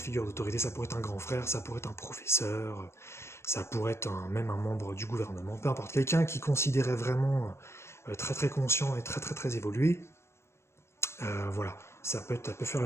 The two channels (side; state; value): right; late; 0.13 ms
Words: d'autorité, ça pourrait être un grand frère, ça pourrait être un professeur, ça pourrait être même un membre du gouvernement, peu importe. Quelqu'un qui considérait vraiment très très conscient et très très très évolué, voilà, ça peut faire le